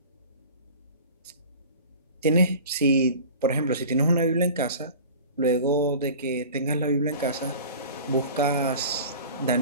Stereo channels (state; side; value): inverted; both; correlation -0.40